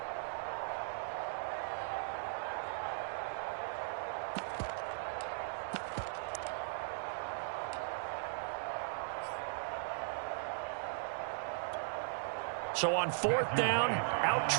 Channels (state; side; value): silent; left; digital silence